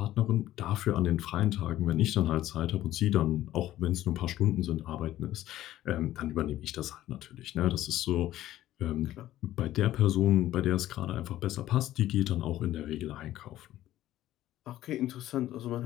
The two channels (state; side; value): quieter; right; 14.0 dB